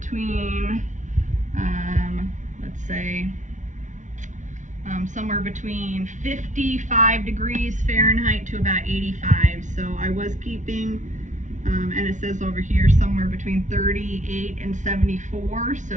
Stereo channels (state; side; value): late; left; 0.36 ms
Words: let's say somewhere between 55 degrees Fahrenheit to about 85. So I was keeping and it says over here somewhere between 38 and 74,